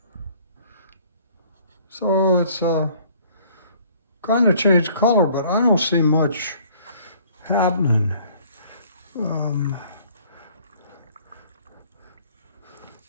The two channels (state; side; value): inverted; both; correlation -0.57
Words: So it's kind of changed color, but I don't see much happening.